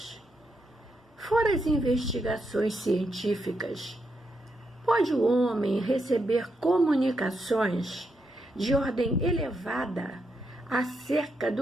fora as investigações científicas, pode o homem receber comunicações de ordem elevada acerca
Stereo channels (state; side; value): normal; both; correlation 0.82